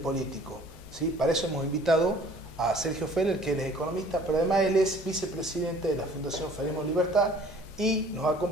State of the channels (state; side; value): normal; both; correlation 0.52